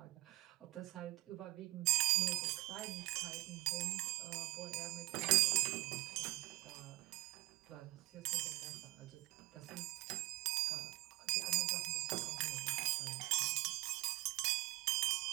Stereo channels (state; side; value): quieter; left; 21.3 dB